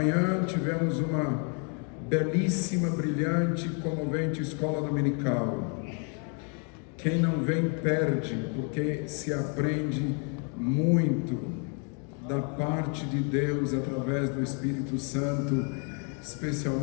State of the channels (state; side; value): quieter; right; 39.0 dB